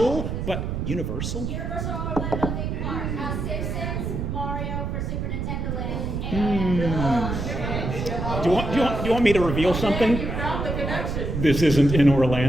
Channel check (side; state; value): right; noise; rumble, 3 dB below the sound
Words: but Universal? Universal Orlando theme park. Simpsons, Mario for Super Nintendo Land, and Do you want me to reveal something? You found the connection. This isn't in